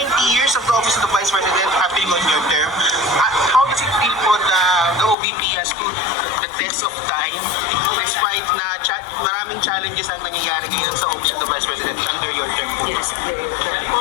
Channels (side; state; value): right; drops out; at 5.2 s